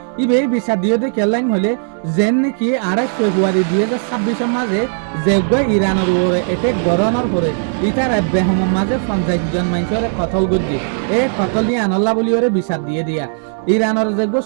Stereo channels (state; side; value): silent; left; digital silence